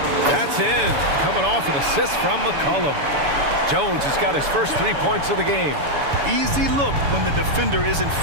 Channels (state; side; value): late; left; 7.0 ms